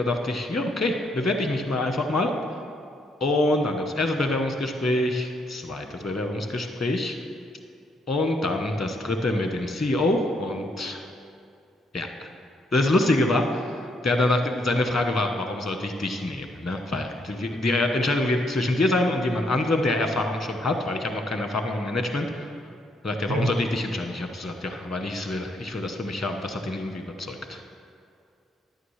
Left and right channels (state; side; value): normal; both; correlation 0.73